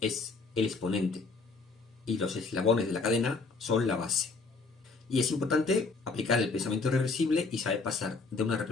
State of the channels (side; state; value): right; quieter; 4.1 dB